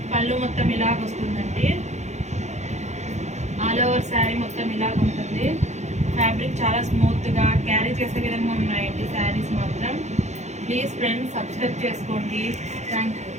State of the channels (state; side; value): late; left; 0.33 ms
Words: పళ్ళు మొత్తం ఇలాగ వస్తుందండి. ఆల్ ఓవర్ శారీ మొత్తం ఇలాగ ఉంటుంది. ఫ్యాబ్రిక్ చాలా స్మూత్గా క్యారీ చేసే విధంగా ఉన్నాయండి శారీస్ మాత్రం. ప్లీజ్ ఫ్రెండ్స్ సబ్స్క్రైబ్ చేసుకోండి. Thank you.